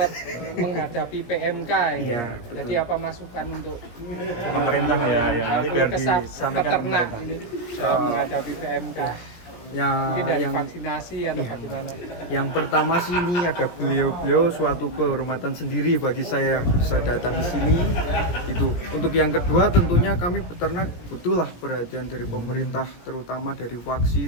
menghadapi PMK ini. Iya, Jadi apa masukan untuk Pemerintah ya, yang nanti biar disampaikan peternak pemerintah. ini menghadapi PMK? Mungkin dari yang vaksinasi atau bagaimana? yang pertama sih ini ada beliau suatu kehormatan sendiri bagi saya bisa datang di sini itu. Untuk yang kedua tentunya kami peternak butuhlah perhatian dari pemerintah terutama dari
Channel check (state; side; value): late; right; 17 ms